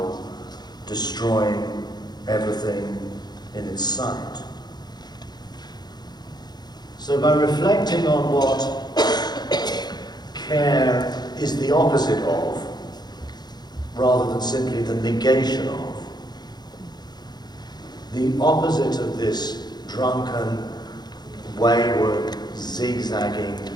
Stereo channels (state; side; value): late; right; 0.20 ms